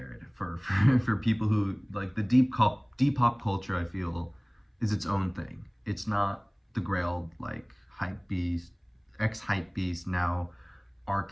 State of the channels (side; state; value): both; identical; correlation 1.00